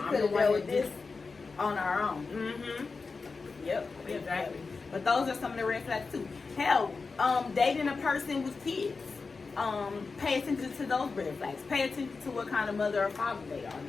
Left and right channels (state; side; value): quieter; right; 4.4 dB